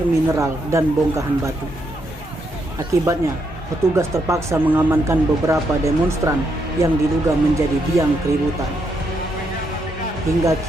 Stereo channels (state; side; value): normal; both; correlation 0.78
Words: mineral dan bongkahan batu. Akibatnya, petugas terpaksa mengamankan beberapa demonstran yang diduga menjadi biang keributan. Hingga